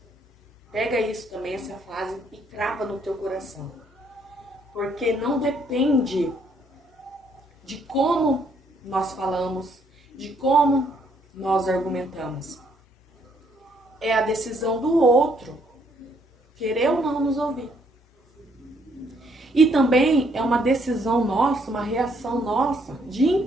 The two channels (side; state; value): both; normal; correlation 0.69